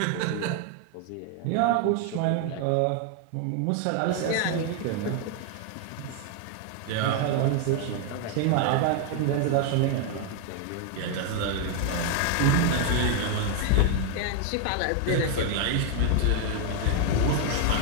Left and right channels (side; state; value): both; different; correlation 0.00